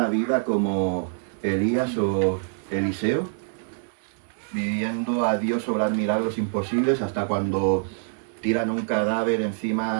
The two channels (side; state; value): left; silent; digital silence